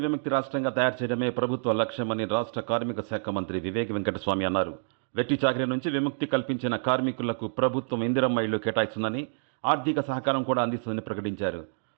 విముక్తి రాష్ట్రంగా తయారు చేయడమే ప్రభుత్వ లక్ష్యమని రాష్ట్ర కార్మిక శాఖ మంత్రి వివేక్ వెంకటస్వామి అన్నారు. వెట్టి చాకిరీ నుంచి విముక్తి కల్పించిన కార్మికులకు ప్రభుత్వం ఇందిరమ్మ ఇళ్లు కేటాయిస్తుందని, ఆర్థిక సహకారం కూడా అందిస్తుందని ప్రకటించారు.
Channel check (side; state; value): left; silent; digital silence